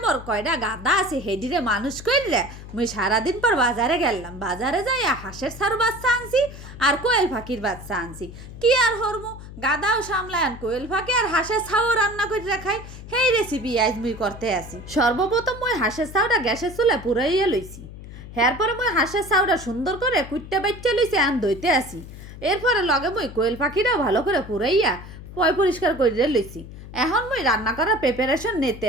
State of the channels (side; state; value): left; noise; hum, 14 dB below the sound